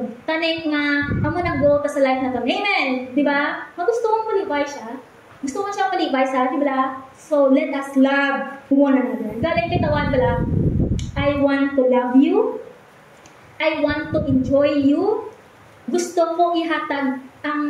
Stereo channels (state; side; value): identical; both; correlation 1.00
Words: Tanay nga, amo nag-go ka sa life na to. Amen! Di ba? Gusto mong palibay siya. Gusto mo siya palibay sa atin, bala? So, let us love one another. Galing kitawan, bala? I want to love you. I want to enjoy you. Gusto ko ihatag ang...